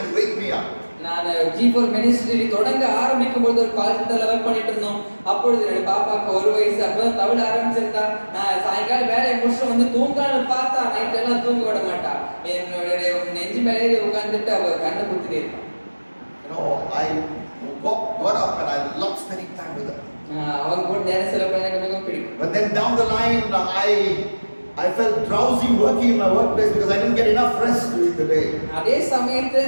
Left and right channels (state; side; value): inverted; both; correlation -1.00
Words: wake me up. நான் G4 ministry தொடங்க ஆரம்பிக்கும் போது ஒரு கால் சென்டர்ல work பண்ணிட்டு இருந்தோம். அப்பொழுது என்னோட பாப்பாக்கு 1 வயசு. அப்போ தவிழ ஆரம்பிச்சிருந்தா. நான் சாயங்காலம் வேலையை முடிச்சு வந்து தூங்கலான்னு பார்த்தா நைட் எல்லாம் தூங்க விட மாட்டா. என்னுடைய நெஞ்சு மேலே உட்கார்ந்துட்டு அவ கண்ணை குத்திட்டே இருப்பா. I got up and I loved spending time with her. அவங்க கூட நேரம் செலவு எனக்கு மிகவும் பிடிக்கும். But then down the line, I felt drowsy working in my workplace because I didn't get enough rest during the day. அதே சமயத்துல